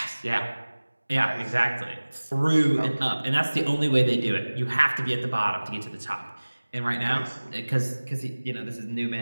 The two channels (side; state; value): both; inverted; correlation -1.00